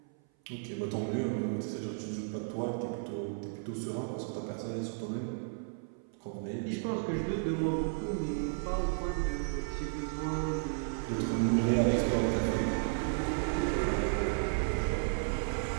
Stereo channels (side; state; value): left; silent; 55 dB below the other